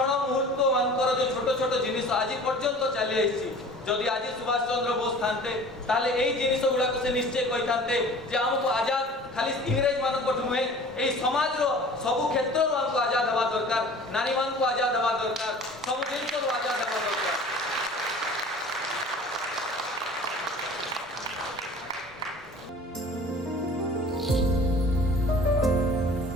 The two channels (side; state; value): both; normal; correlation 0.44